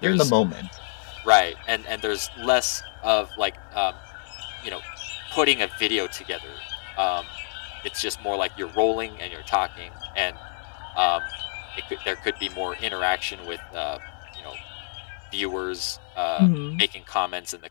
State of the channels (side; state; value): right; silent; digital silence